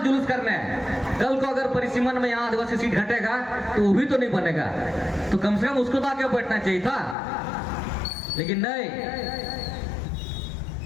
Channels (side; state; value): right; drops out; at 7.2 s